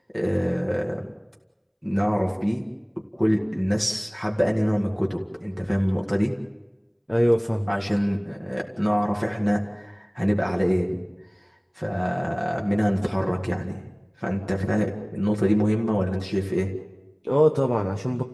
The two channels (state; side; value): identical; both; correlation 1.00